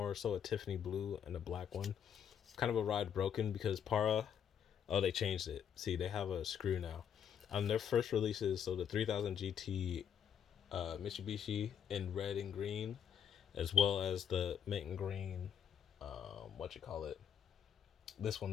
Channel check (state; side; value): quieter; right; 8.5 dB